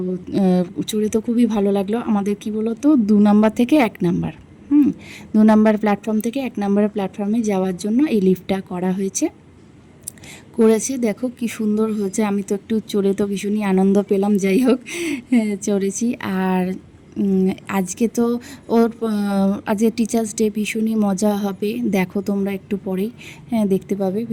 চড়ে তো খুবই ভালো লাগলো। আমাদের কি বলো তো 2 নাম্বার থেকে 1 নাম্বার 2 নাম্বার প্ল্যাটফর্ম থেকে 1 নাম্বারের প্ল্যাটফর্মে যাওয়ার জন্য এই লিফটটা করেছে। দেখো কি সুন্দর হয়েছে। আমি তো একটু চড়ে তো ভীষণই আনন্দ পেলাম। যাই হোক, চড়েছি। আর আজকে তো আজকে টিচার্স ডে, ভীষণই মজা হবে। দেখো তোমরা একটু পরেই দেখতে পাবে,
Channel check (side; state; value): both; identical; correlation 1.00